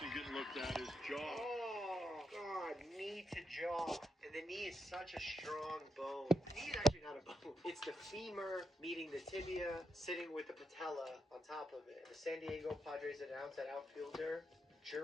getting looked at his jaw. Oh, God, knee to jaw. And the knee is such a strong bone. The knee is actually not a bone. It's the femur meeting the tibia, sitting with the patella on top of it. The San Diego Padres announced that outfielder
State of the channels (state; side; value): normal; both; correlation 0.83